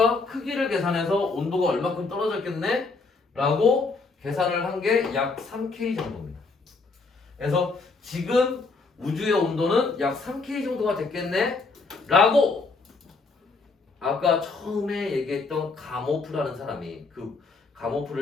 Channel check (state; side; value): quieter; right; 4.0 dB